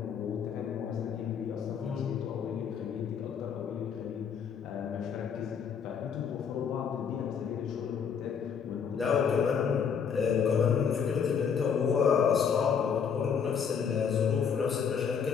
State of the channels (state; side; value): quieter; right; 7.0 dB